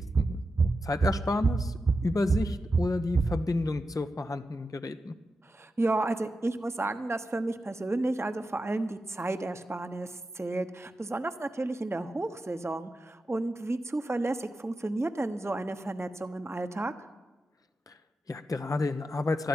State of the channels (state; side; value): normal; both; correlation 0.90